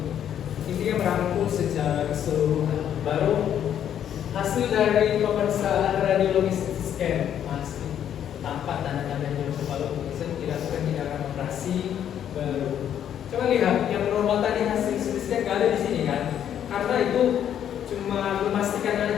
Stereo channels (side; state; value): right; quieter; 9.8 dB